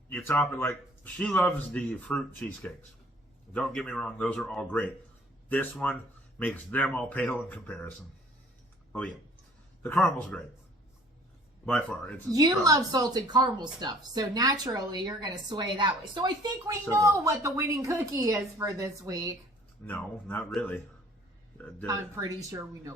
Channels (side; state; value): both; normal; correlation 0.55